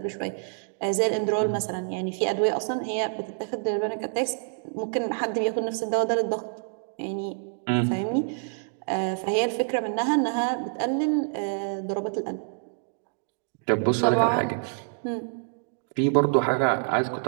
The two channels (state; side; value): silent; left; digital silence